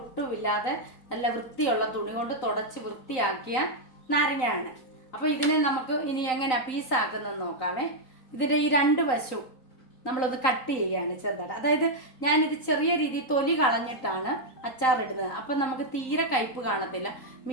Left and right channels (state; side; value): late; right; 3.9 ms